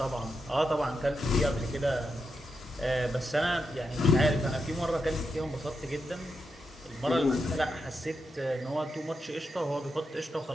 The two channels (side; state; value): both; normal; correlation 0.85